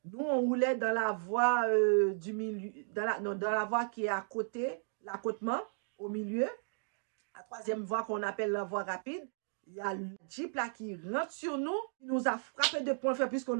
Nous, on roulait dans la voie du milieu, dans la voie qui est à côté, l'accotement, au milieu. La troisième voie qu'on appelle la voie rapide. Il y a le Jeep là qui rentre sur nous. Il nous a frappé de point faible puisqu'on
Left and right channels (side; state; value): left; silent; digital silence